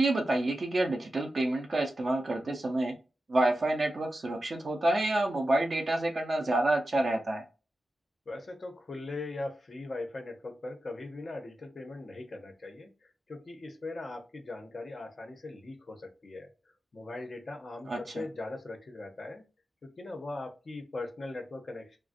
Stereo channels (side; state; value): both; normal; correlation 0.92